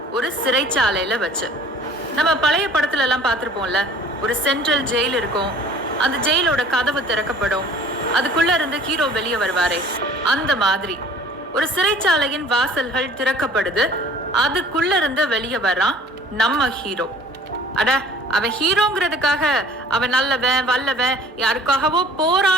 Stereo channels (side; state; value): both; normal; correlation 0.50